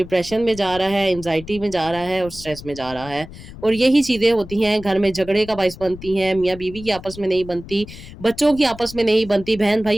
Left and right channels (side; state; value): left; noise; rumble, 16 dB below the sound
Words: में जा रहा है, एंग्जाइटी में जा रहा है और स्ट्रेस में जा रहा है। और यही चीज़ें होती हैं, घर में झगड़े का बायस बनती हैं, मियाँ-बीवी की आपस में नहीं बनती, बच्चों की आपस में नहीं बनती,